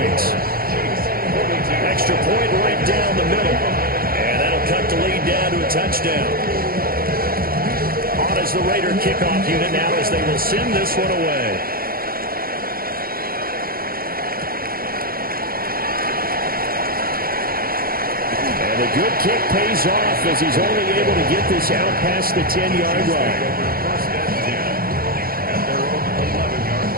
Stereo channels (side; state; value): left; late; 0.43 ms